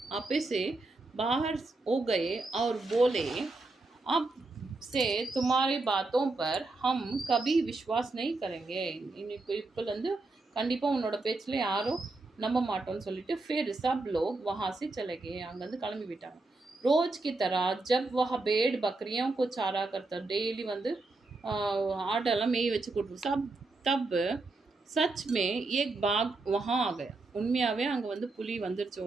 आपे से बाहर हो गए और बोले, अब से तुम्हारी बातों पर हम कभी विश्वास नहीं करेंगे. இப்போலேருந்து கண்டிப்பாக உன்னோட பேச்சில் யாரும் நம்ப மாட்டோம்னு சொல்லிட்டு फिर सब लोग वहाँ से चले गए. அங்கேருந்து கிளம்பி விட்டாங்க. रोज की तरह जब वह भेड़ बकरियों को चारा करता, डेली வந்து ஆட்டெல்லாம் மேய் வச்சு கொடுத்து सब तब सच में एक बाघ वहाँ आ गया. உண்மையாகவே அங்கே வந்து புலி வந்துருச்சு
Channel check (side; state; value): left; quieter; 3.3 dB